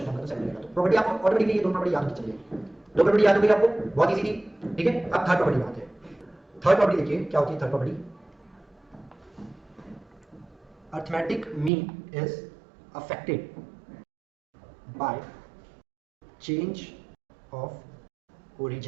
नंबर, तो 7 रहेगा। तो प्रॉपर्टी आपको ऑटोमेटिकली ये दो प्रॉपर्टी याद होती चलिए, दो प्रॉपर्टी याद हो गई आपको, बहुत इजी थी। ठीक है, अब थर्ड प्रॉपर्टी आते हैं। थर्ड प्रॉपर्टी देखिए क्या होती है third property. Arithmetic mean is affected by change of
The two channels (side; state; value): left; drops out; at 11.7 s